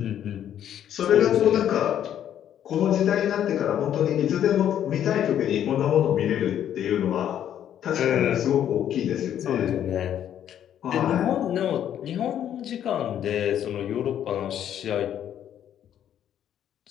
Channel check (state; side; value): quieter; right; 10.3 dB